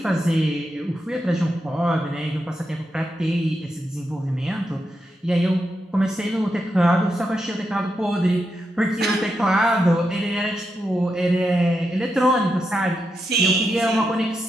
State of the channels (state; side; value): normal; both; correlation 0.85